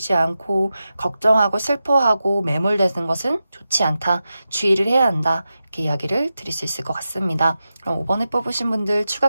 않고 걱정하고 슬퍼하고 매몰되는 것은 좋지 않다. 주의를 해야 한다. 이렇게 이야기를 드릴 수 있을 것 같습니다. 그럼 5번에 뽑으신 분들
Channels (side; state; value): both; inverted; correlation -0.91